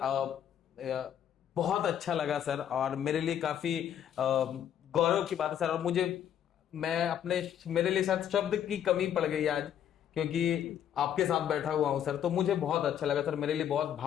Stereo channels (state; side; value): quieter; right; 9.8 dB